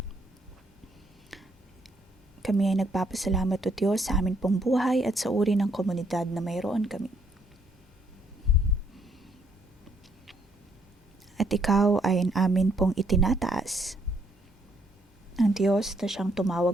Kami ay nagpapasalamat, O Diyos, sa amin pong buhay at sa uri ng komunidad na mayroon kami. At ikaw ay amin pong itinataas. Ang Diyos na siyang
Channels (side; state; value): both; normal; correlation 0.70